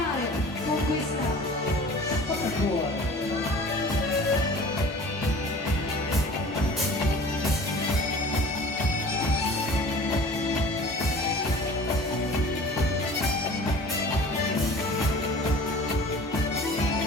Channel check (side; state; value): both; normal; correlation 0.44